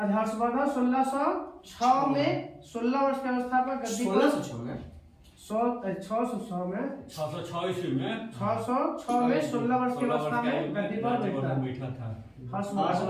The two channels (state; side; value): identical; both; correlation 1.00